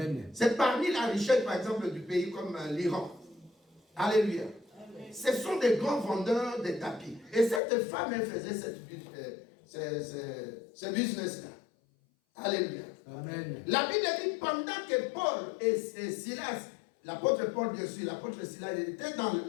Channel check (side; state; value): right; drops out; at 7.6 s